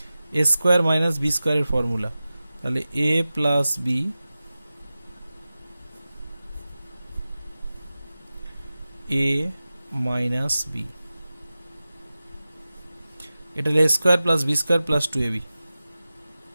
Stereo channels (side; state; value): both; inverted; correlation -0.95